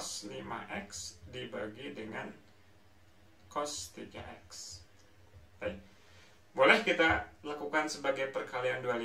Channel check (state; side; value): identical; both; correlation 1.00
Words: 5x dibagi dengan cos 3x. Baik. Boleh kita lakukan sebagai perkalian dua